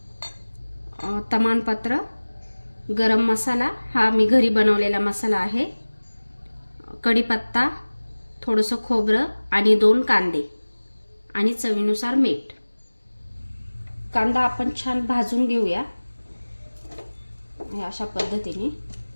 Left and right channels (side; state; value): both; inverted; correlation -1.00